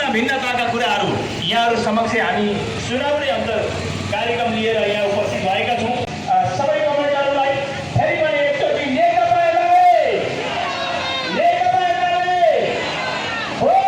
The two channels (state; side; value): identical; both; correlation 1.00